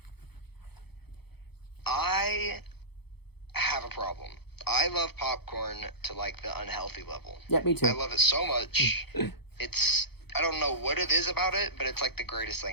I have a problem. I love popcorn to like the unhealthy level. Yeah, me too. I love it so much. I don't know what it is about it, but it's like the greatest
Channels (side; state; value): right; late; 0.97 ms